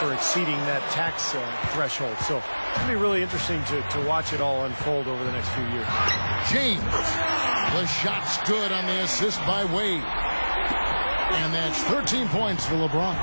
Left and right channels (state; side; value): inverted; both; correlation -1.00